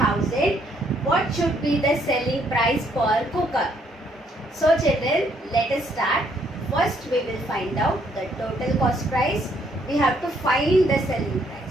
what should be the selling price per cooker? So children, let us start. First we will find out the total cost price. We have to find the selling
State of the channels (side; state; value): both; normal; correlation 0.69